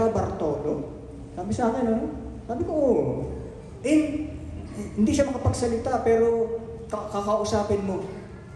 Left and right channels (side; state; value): both; identical; correlation 1.00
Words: Bartolo? Sabi sa akin, ano? Sabi ko, hindi siya makapagsalita, pero kakausapin mo.